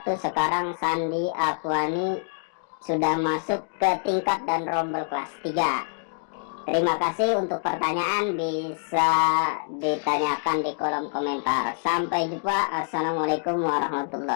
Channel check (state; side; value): silent; right; digital silence